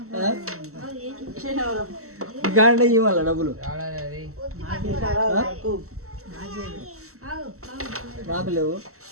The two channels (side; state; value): left; late; 0.63 ms